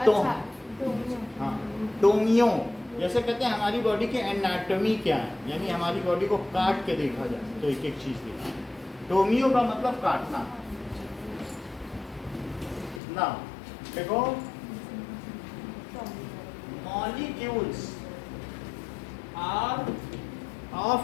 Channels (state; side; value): drops out; right; at 13.0 s